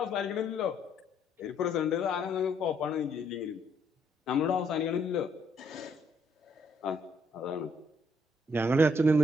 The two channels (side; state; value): both; normal; correlation 0.70